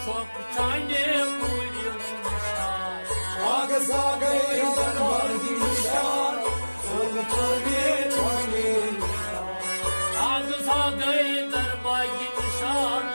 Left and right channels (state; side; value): inverted; both; correlation -1.00